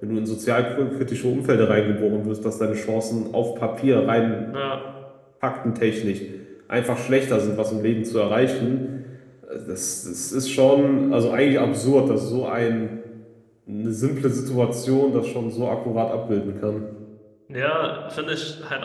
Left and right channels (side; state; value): both; identical; correlation 1.00